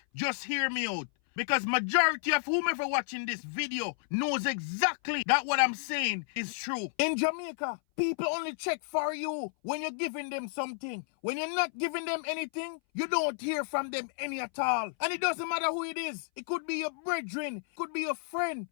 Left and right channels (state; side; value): silent; right; 57 dB below the other